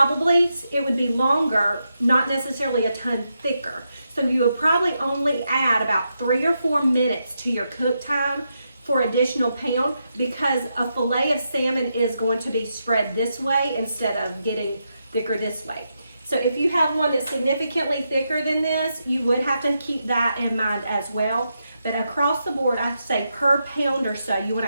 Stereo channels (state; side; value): inverted; both; correlation -0.84